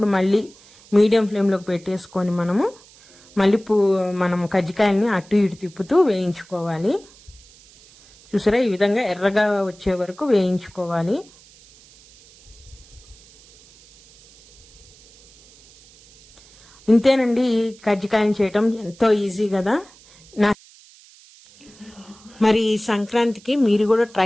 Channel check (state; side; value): noise; right; hiss, 25 dB below the sound